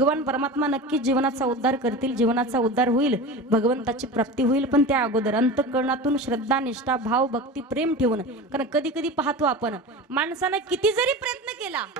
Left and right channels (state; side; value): normal; both; correlation 0.30